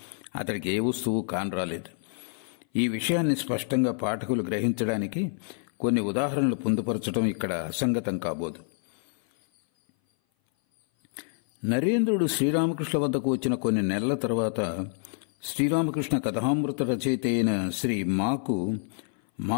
అతడికి ఏ వస్తువు కానరాలేదు. ఈ విషయాన్ని స్పష్టంగా పాఠకులు గ్రహించడానికి కొన్ని ఉదాహరణలు పొందుపరచడం ఇక్కడ అసంగతం కాబోదు. నరేంద్రుడు శ్రీరామకృష్ణ వద్దకు వచ్చిన కొన్ని నెలల తర్వాత శ్రీరామకృష్ణ కథామృత రచయిత అయిన శ్రీ మాకు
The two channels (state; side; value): silent; right; 57 dB below the other